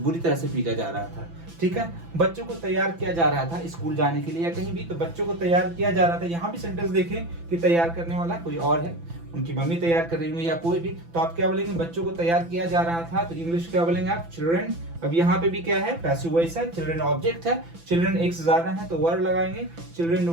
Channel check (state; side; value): late; left; 6.0 ms